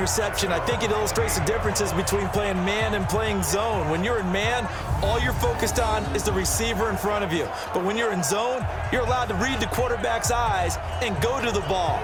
I think it illustrates the differences between playing man and playing zone. When you're in man, all you're focused on is the receiver in front of you. But when you're in zone, you're allowed to read the quarterback's eyes and go to the ball.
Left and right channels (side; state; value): both; identical; correlation 1.00